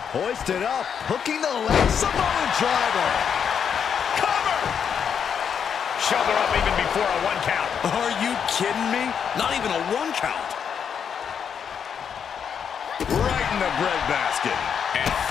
Hoisted up, hooking the leg. Samoan driver. Cover. Shoulder up even before a 1 count. Are you kidding me? Not even a 1 count. Right in the breadbasket. And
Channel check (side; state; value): right; quieter; 7.5 dB